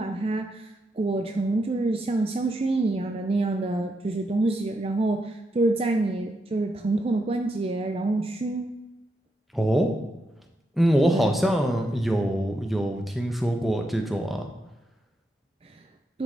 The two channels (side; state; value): both; normal; correlation 0.83